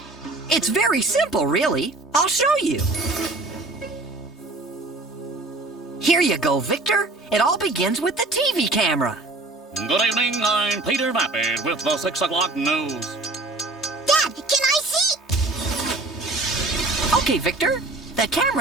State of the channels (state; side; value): quieter; left; 3.1 dB